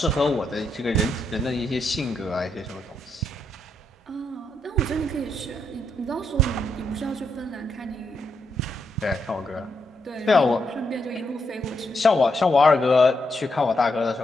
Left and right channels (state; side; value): normal; both; correlation 0.79